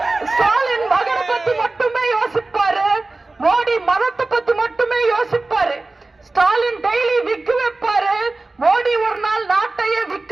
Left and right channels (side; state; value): left; quieter; 3.2 dB